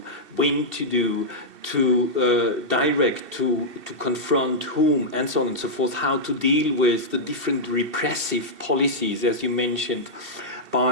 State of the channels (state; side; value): late; left; 2.7 ms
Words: when to do, to direct, to confront whom, and so on and so forth? How to deal with the different repressive policies, as you mentioned,